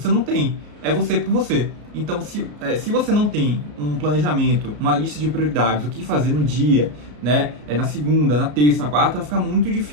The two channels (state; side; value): late; left; 33 ms